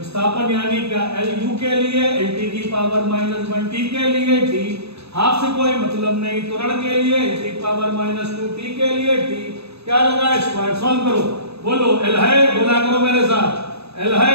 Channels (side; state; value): left; late; 0.79 ms